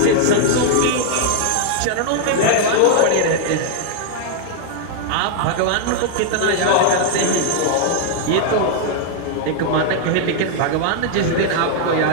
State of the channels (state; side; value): different; both; correlation 0.00